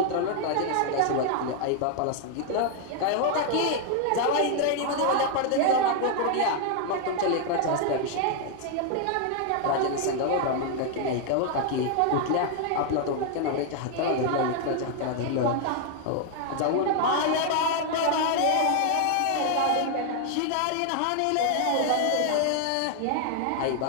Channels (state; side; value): different; both; correlation 0.00